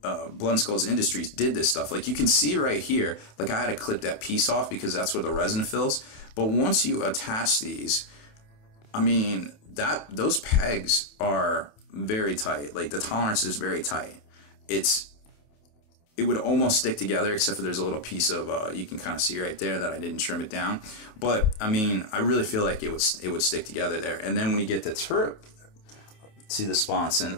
Blood and Skulls Industries did this stuff. Like, you can see right here, like I had to clip that piece off because that's where the resin fills. But once you attach these, I mean, those pegs are very tight. Like, the tolerance is very tight. It would almost stick together, except for there's a little piece of you can kind of see right there that I didn't trim it down. But I mean, I really feel like it would stick together there. And then when you get the turret to the sponson,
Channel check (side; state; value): right; late; 28 ms